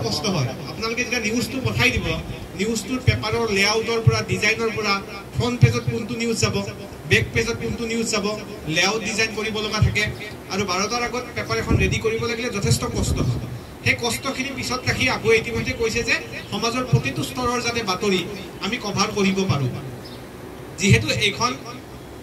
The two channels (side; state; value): both; identical; correlation 1.00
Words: কষ্ট হয়। আপোনালোকে যেতিয়া নিউজটো পঠাই দিব, নিউজটোৰ পেপাৰৰ লেআউটৰ পৰা ডিজাইনৰ পৰা ফ্ৰণ্ট পেজত কোনটো নিউজ যাব, বেক পেজত কোনটো নিউজ যাব, লেআউট ডিজাইন কৰিব লগা থাকে। আৰু 12টাৰ আগত পেপাৰ এখন ৰেডি কৰিব লাগিলে যথেষ্ট কষ্ট হয়। সেই কষ্টখিনি পিছত ৰাখি আকৌ ইতিমধ্যে কৈছে যে সমাজৰ প্ৰতিটো স্তৰৰ যাতে বাতৰি আমি কভাৰ কৰিব পাৰোঁ। যিহেতু এইখন